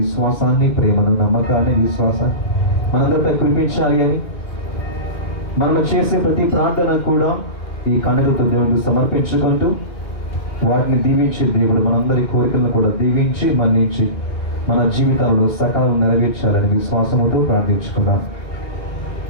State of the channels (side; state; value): right; late; 2.4 ms